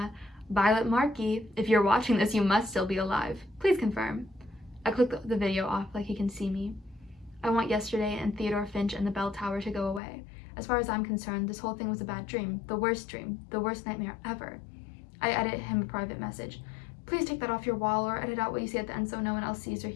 "Violet Markey, if you're watching this, you must still be alive. Please confirm." I click the video off like he can see me. I want yesterday and Theodore Finch and the bell tower to go away. As far as I'm concerned, this whole thing was a bad dream, the worst nightmare ever. I edit him a private message. Please take that off your wall or edit out what you say at the end so no one else sees or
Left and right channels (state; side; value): drops out; right; at 10.0 s